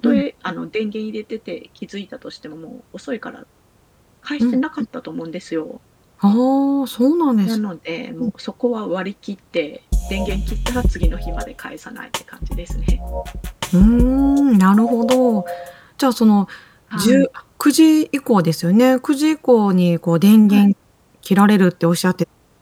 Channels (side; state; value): both; identical; correlation 1.00